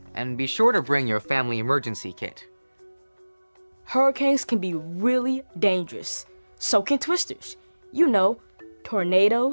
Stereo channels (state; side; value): inverted; both; correlation -1.00